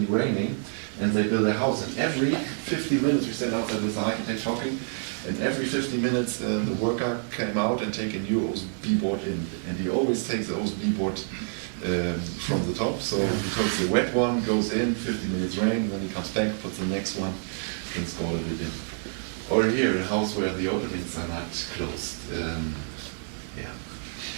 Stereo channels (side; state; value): left; silent; 60 dB below the other